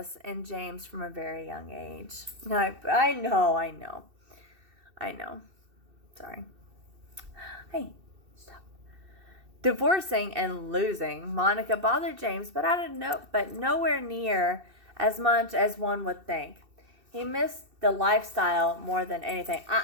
in James from a very young age. I know. Sorry. Hey, stop. Divorcing and losing Monica bothered James, but nowhere near as much as one would think. He missed the lifestyle more than anything.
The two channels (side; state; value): left; late; 2.7 ms